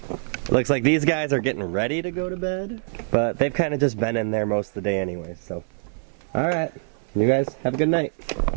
looks like these guys are getting ready to go to bed, but they've kind of just been in there most of the day anyway, so. All right, you guys have a good night.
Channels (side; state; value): left; silent; 57 dB below the other